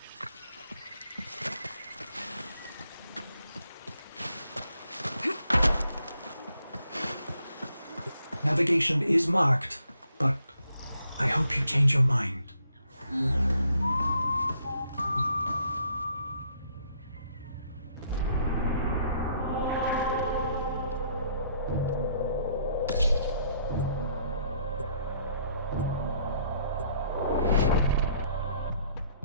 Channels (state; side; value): inverted; both; correlation -0.68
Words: Navigation is marked, but I hope you change your mind.